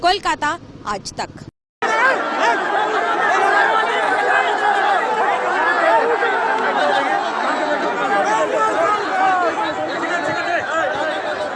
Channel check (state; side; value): identical; both; correlation 1.00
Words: कोलकाता, आज तक।